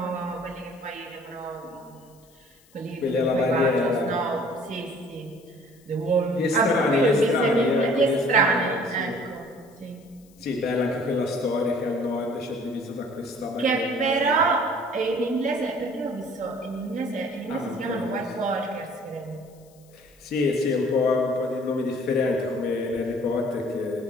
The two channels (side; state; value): left; noise; hiss, 30 dB below the sound